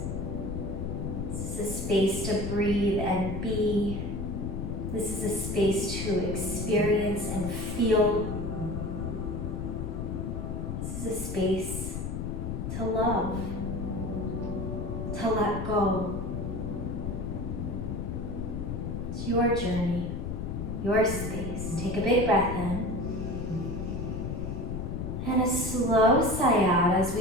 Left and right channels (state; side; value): noise; left; rumble, 4 dB below the sound